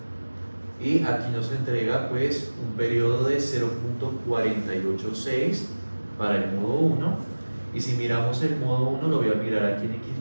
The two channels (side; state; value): both; inverted; correlation -1.00